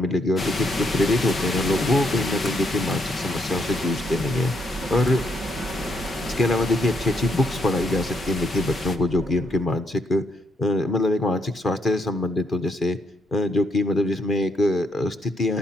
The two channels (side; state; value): both; normal; correlation 0.75